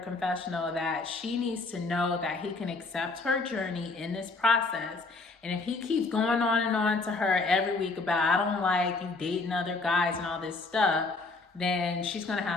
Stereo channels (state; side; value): quieter; right; 3.7 dB